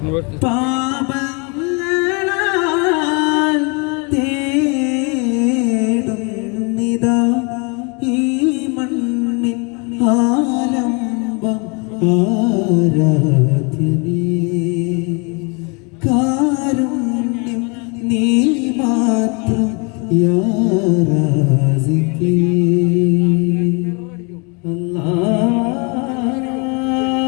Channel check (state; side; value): quieter; right; 32.3 dB